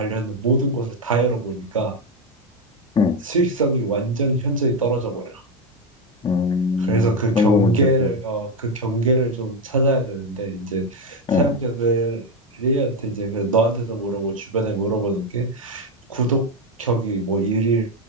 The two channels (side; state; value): both; normal; correlation 0.08